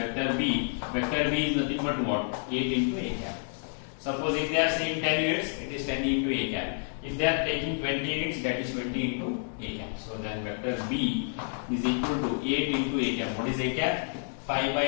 B. Vector B is nothing but what? 8 into A cap. Suppose if they are saying 10 units, it is 10 into A cap. If they are taking 20 units, that is 20 into A cap. So then vector B is equal to 8 into A cap. What is A cap? 5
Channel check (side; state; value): right; silent; 58 dB below the other